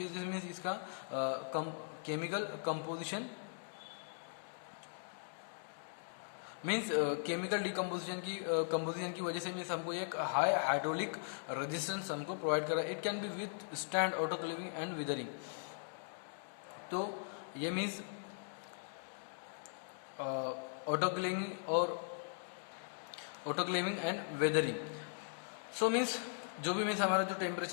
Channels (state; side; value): silent; right; digital silence